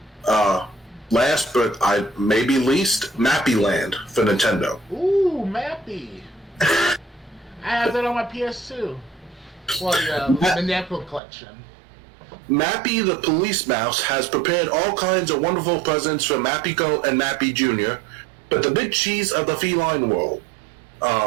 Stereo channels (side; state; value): left; drops out; at 11.2 s